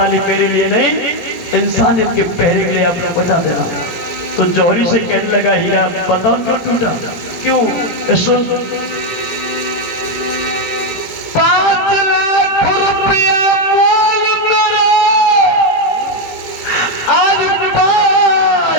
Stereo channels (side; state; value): right; late; 18 ms